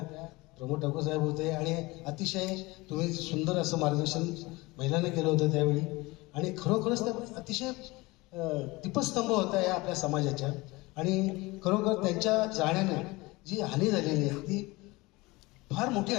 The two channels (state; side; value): quieter; right; 22.5 dB